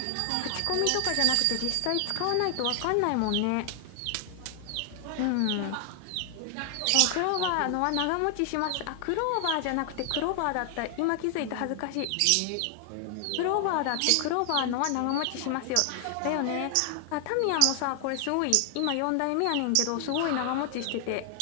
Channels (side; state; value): both; different; correlation 0.00